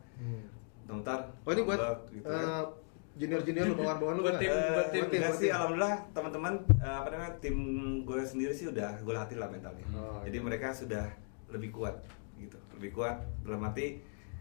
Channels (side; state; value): right; silent; 53 dB below the other